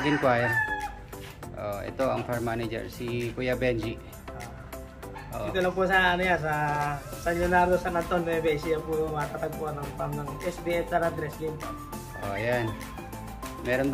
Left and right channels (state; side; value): identical; both; correlation 1.00